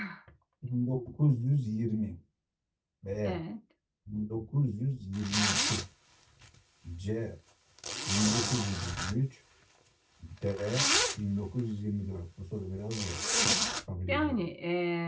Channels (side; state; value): both; identical; correlation 1.00